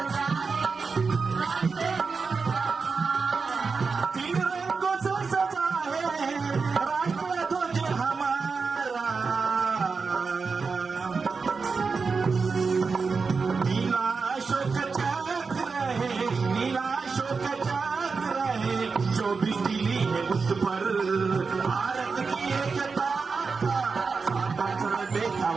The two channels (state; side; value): quieter; left; 4.8 dB